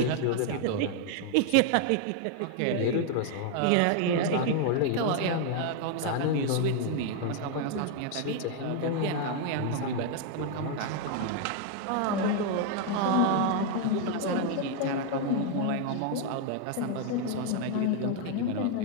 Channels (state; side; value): different; both; correlation 0.00